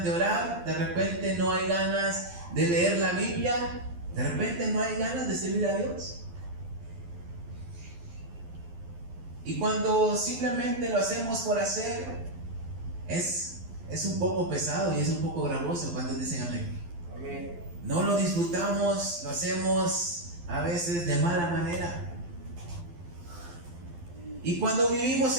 de orar, de repente no hay ganas de leer la Biblia, de repente no hay ganas de servir a Dios. Y cuando simplemente lo hacemos por hacer, es un poco pesado y es un poco gravoso cuando dicen amén. Amén. No lo disfrutamos, lo hacemos a veces de mala manera. Y cuando vivimos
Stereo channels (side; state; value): left; late; 12 ms